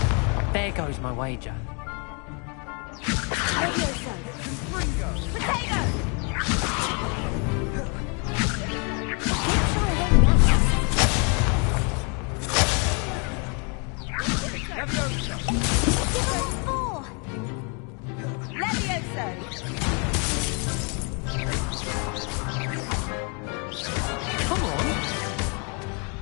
There goes my wager. Levioso! Protego! Come on!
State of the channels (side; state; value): right; quieter; 35.5 dB